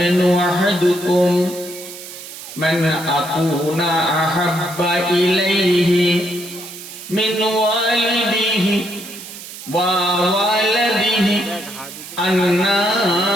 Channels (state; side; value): noise; right; hiss, 13 dB below the sound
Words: أحدكم من أكون أحب إليه من والده ووالده